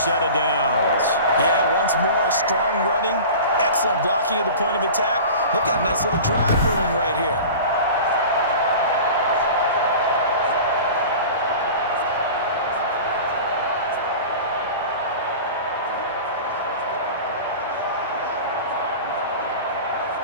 of downs. Yeah, once more, strong running, excellent blocking at the point of attack. They've got a nice little drive brewing right here.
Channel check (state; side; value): inverted; both; correlation -0.36